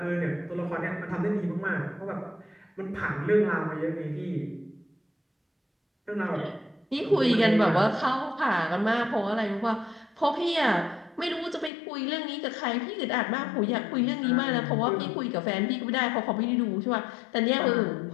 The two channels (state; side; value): drops out; right; at 11.7 s